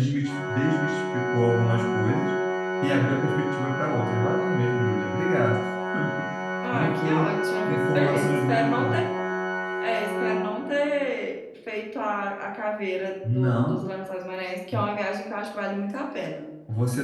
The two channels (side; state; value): both; identical; correlation 1.00